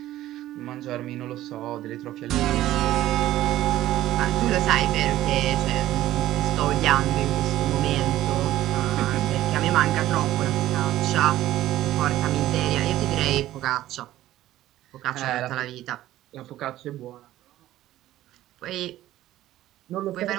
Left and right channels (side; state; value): left; quieter; 14.3 dB